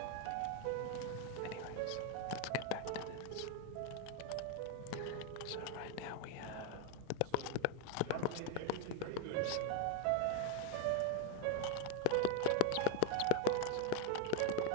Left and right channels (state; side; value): different; both; correlation 0.00